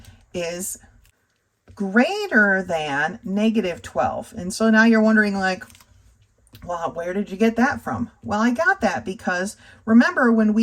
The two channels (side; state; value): both; identical; correlation 1.00